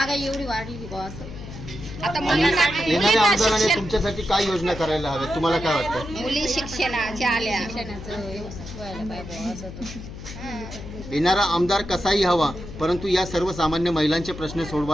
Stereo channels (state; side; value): noise; left; hum, 12 dB below the sound